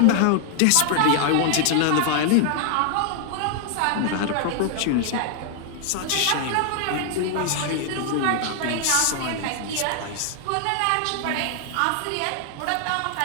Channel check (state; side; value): different; both; correlation 0.00